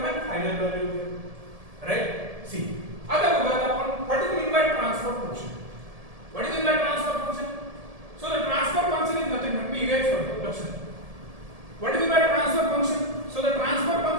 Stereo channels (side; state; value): left; late; 1.7 ms